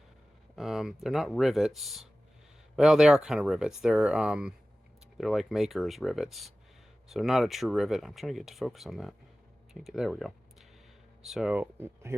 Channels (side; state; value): both; normal; correlation 0.96